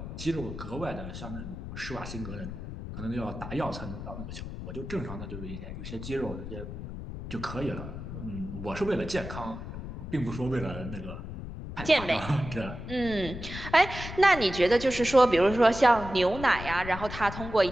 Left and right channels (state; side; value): noise; left; rumble, 9 dB below the sound